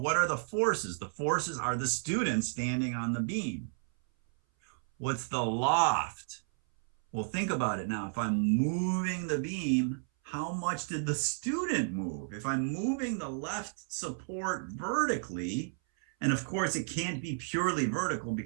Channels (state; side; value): silent; left; 56 dB below the other